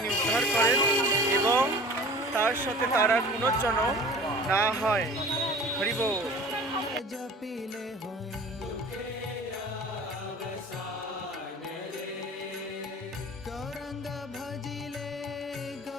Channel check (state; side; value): normal; both; correlation 0.43